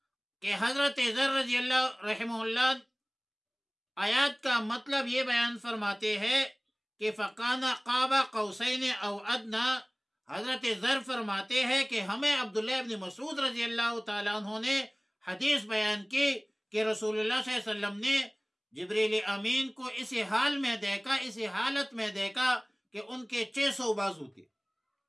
کہ حضرت ذر رضی اللہ رحمہ اللہ آیات کا مطلب یہ بیان فرماتے ہیں کہ فَقَانَ قَابَ قَوْسَيْنِ أَوْ أَدْنَىٰ، حضرت ذر فرماتے ہیں کہ ہمیں عبداللہ ابن مسعود رضی اللہ تعالیٰ عنہ نے حدیث بیان کی کہ رسول اللہ صلی اللہ علیہ وسلم نے جبریل امین کو اسی حال میں دیکھا، اسی حالت میں دیکھا کہ ان کے 600 بازو تھے۔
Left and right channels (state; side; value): identical; both; correlation 1.00